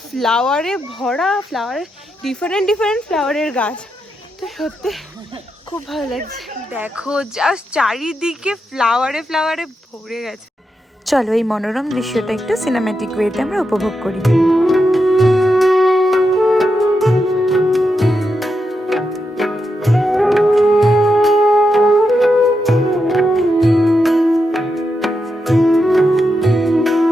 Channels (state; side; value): normal; both; correlation 0.85